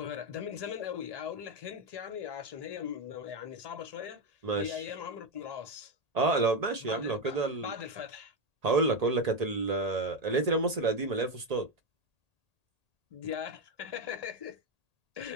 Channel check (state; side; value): late; left; 1.8 ms